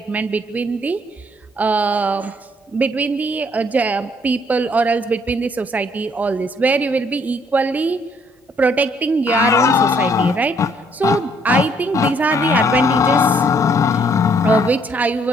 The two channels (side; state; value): both; normal; correlation 0.66